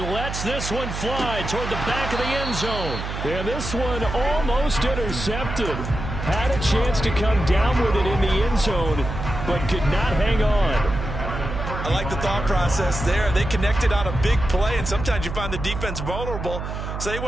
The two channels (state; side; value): noise; right; hum, 6 dB below the sound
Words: this one fly toward the back of the end zone. And this one almost intercepted. Had a chance to come down with it in the end zone, but could not hang on. I like the thought process there. They connected on a big play, and sometimes you find the defense vulnerable. So they